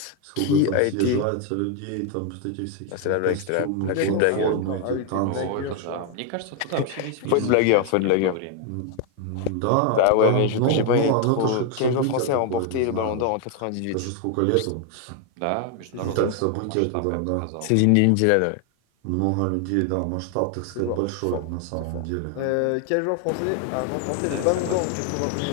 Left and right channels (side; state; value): both; different; correlation 0.01